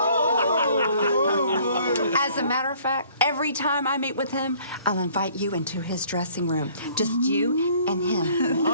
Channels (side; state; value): both; inverted; correlation -0.57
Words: As a matter of fact, every time I meet with him, I'll invite you into his dressing room. Just you and him.